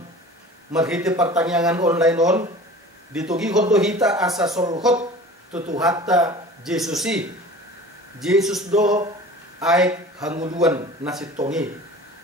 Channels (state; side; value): normal; both; correlation 0.41